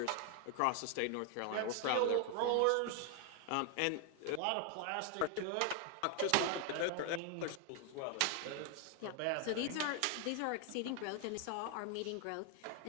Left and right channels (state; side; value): different; both; correlation 0.00